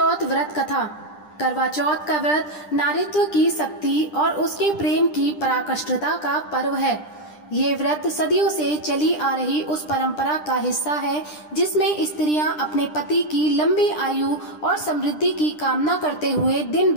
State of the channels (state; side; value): late; right; 10 ms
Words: व्रत कथा। करवा चौथ का व्रत नारीत्व की शक्ति और उसके प्रेम की पराकाष्ठता का पर्व है। ये व्रत सदियों से चली आ रही उस परंपरा का हिस्सा है जिसमें स्त्रियां अपने पति की लंबी आयु और समृद्धि की कामना करते हुए दिन